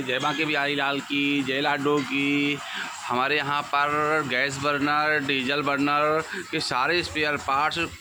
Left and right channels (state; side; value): noise; right; hiss, 28 dB below the sound